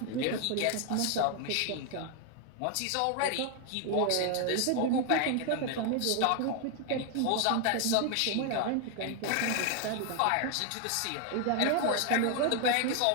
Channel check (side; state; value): both; different; correlation 0.01